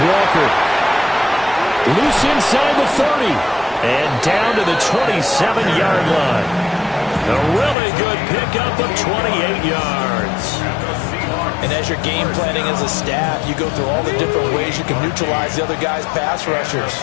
Loose inside the 30. And down to the 27-yard line. A really good pickup of 28 yards. And as you're game planning as a staff, you go through all the different ways you can neutralize the other guy's pass rushers.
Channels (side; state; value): right; drops out; at 7.8 s